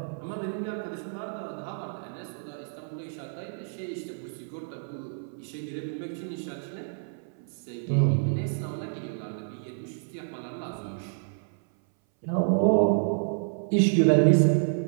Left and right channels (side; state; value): left; silent; 59 dB below the other